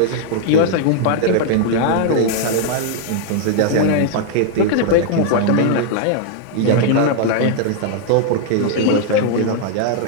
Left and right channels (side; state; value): both; different; correlation 0.00